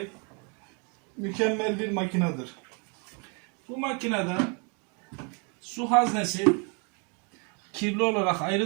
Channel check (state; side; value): quieter; left; 35.4 dB